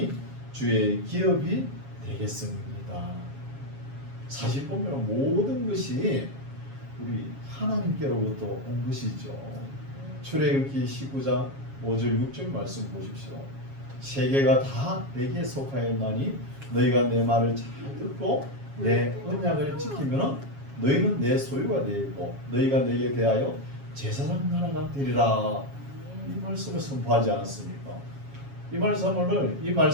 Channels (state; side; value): late; left; 7.3 ms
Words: 주의 기업이 되겠습니다. 사실 보면 모든 것이 우리 하나님께로부터 온 것이죠. 출애굽기 19장 5절 6절 말씀 보십시오. 세계가 다 내게 속하였나니 너희가 내 말을 잘 듣고 내 언약을 지키면 너희는 내 소유가 되고 너희가 내게 대하여 제사장 나라가 되리라. 이 말씀을 선포하지 않았습니까? 이